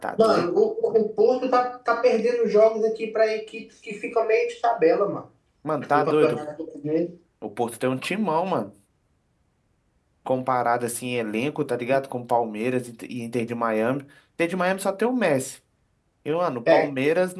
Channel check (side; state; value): both; identical; correlation 1.00